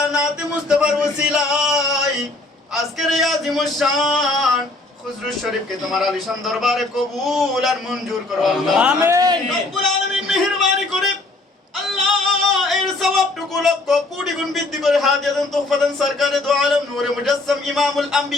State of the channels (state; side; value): quieter; right; 3.0 dB